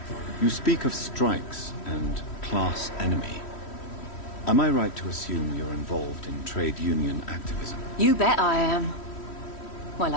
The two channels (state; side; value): late; right; 3.1 ms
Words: You speak of strikes and class enemy. Am I right to assume you're involved in trade union activism? You bet I am. Well,